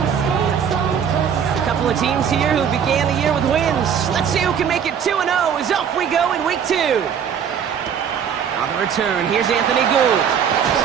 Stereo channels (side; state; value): left; quieter; 7.8 dB